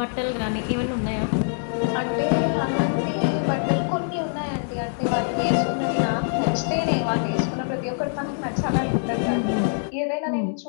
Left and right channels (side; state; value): right; silent; 62 dB below the other